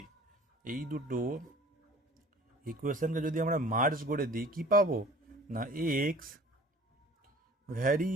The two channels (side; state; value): both; normal; correlation 0.47